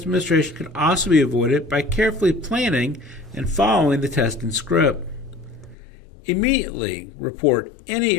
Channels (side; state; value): right; drops out; at 5.8 s